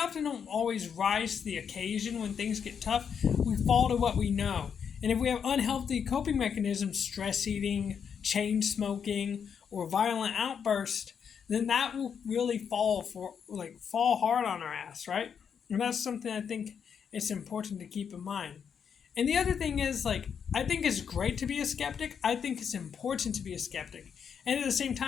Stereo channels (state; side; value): quieter; right; 7.2 dB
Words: don't always rise to the occasion when things get tough. We fall to what we know. And if we have unhealthy coping mechanisms, stress eating, chain smoking, or violent outburst, then that will really fall hard on our ass, right? And that's something I think it's important to keep in mind. And the other thing is, like, I think it's great to be a skeptic. I think it's important to be a skeptic. And at the same